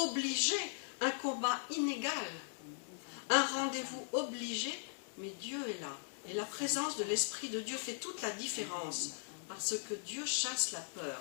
un combat inégal, un rendez-vous obligé, mais Dieu est là. Et la présence de l'Esprit de Dieu fait toute la différence, parce que Dieu chasse la peur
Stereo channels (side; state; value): right; silent; digital silence